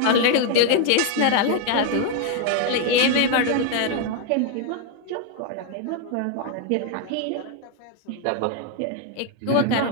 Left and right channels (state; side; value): different; both; correlation 0.01